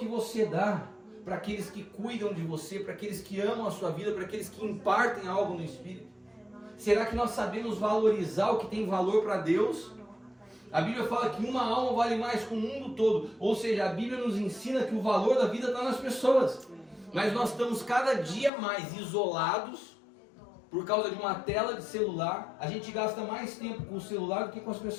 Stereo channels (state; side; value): drops out; right; at 18.5 s